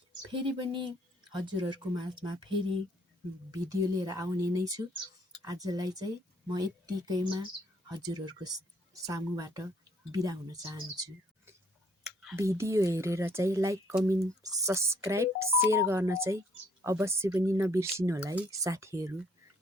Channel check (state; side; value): normal; both; correlation 0.65